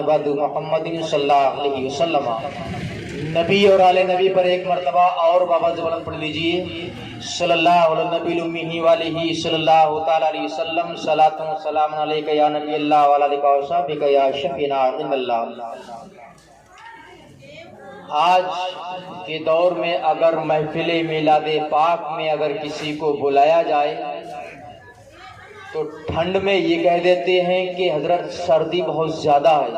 بعد محمد صلی اللہ علیہ وسلم. نبی اور آل نبی پر ایک مرتبہ اور بابا بلند پڑھ لیجئے. صلی اللہ علیہ نبی امی والہ صلی اللہ تعالی علیہ وسلم. صلاۃ و سلام علیک یا نبی اللہ وعلی آلک و صحبک یا شفیعنا عند اللہ. آج کے دور میں اگر محفل میلاد پاک میں اگر کسی کو بلایا جائے تو ٹھنڈ میں یہ کہہ دیتے ہیں کہ حضرت سردی بہت زیادہ ہے،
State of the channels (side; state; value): both; identical; correlation 1.00